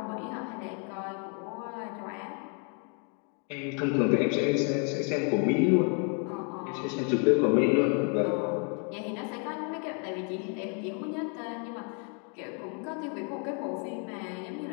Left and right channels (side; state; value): right; quieter; 39.2 dB